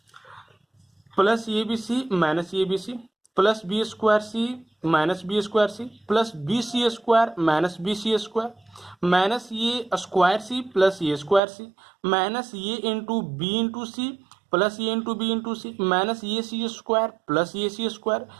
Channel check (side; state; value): left; drops out; at 11.4 s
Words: Plus A B C minus A B C plus B square C minus B square C plus B C square minus B C square minus A square C plus A square C minus A into C plus A into B into C minus A C square plus A C square